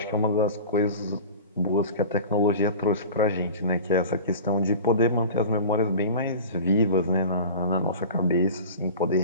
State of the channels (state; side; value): inverted; both; correlation -0.36